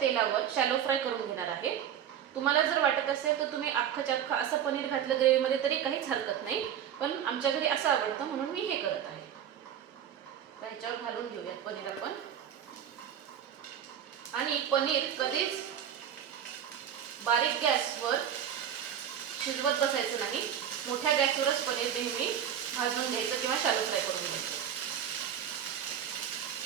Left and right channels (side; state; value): left; quieter; 9.3 dB